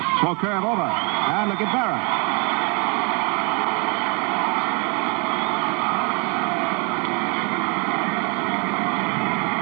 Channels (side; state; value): left; quieter; 34.0 dB